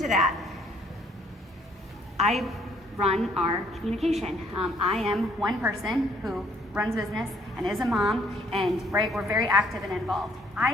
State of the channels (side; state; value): both; normal; correlation 0.64